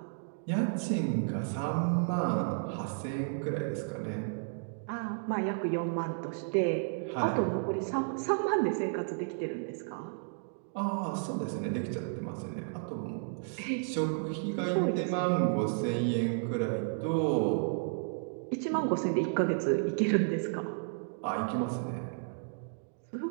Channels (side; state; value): left; silent; digital silence